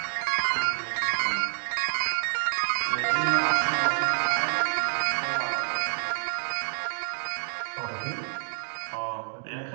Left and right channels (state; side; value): silent; left; digital silence